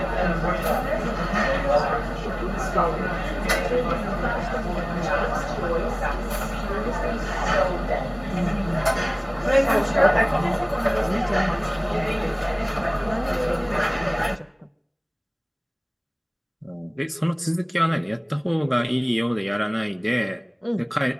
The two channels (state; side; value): identical; both; correlation 1.00